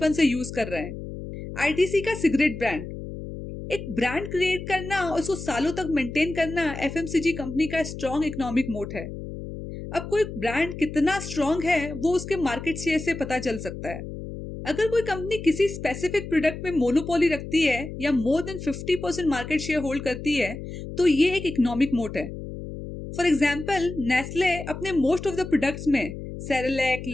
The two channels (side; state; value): left; noise; hum, 9 dB below the sound